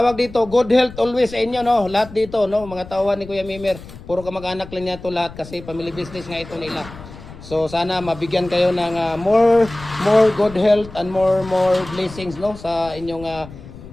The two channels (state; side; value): noise; left; rumble, 16 dB below the sound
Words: dito, good health always sa inyo, no? Lahat dito, no? Mga tauhan ni Kuya Mimer. Puro kamag-anak lang niya to lahat kasi family business nga ito nila. So sana mabigyan kayo ng more good health and more blessings, no? Sa inyong